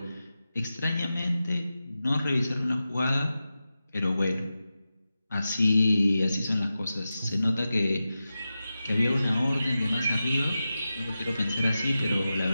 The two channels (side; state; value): both; inverted; correlation -0.93